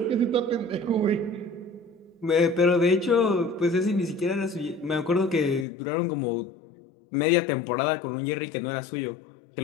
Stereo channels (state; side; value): drops out; right; at 5.7 s